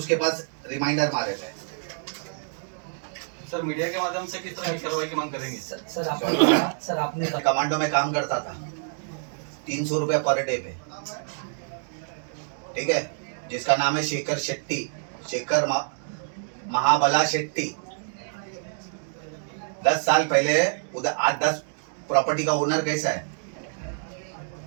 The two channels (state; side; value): silent; left; digital silence